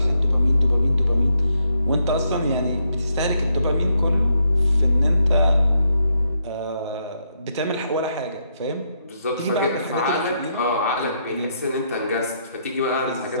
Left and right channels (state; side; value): inverted; both; correlation -0.77